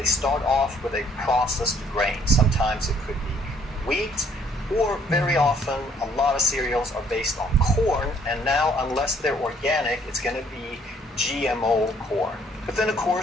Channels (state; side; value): normal; both; correlation 0.63